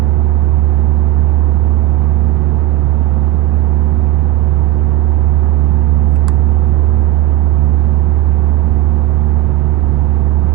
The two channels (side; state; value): left; quieter; 14.8 dB